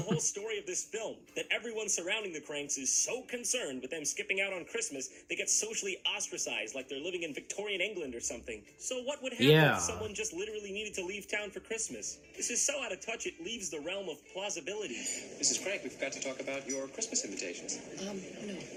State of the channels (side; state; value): both; identical; correlation 1.00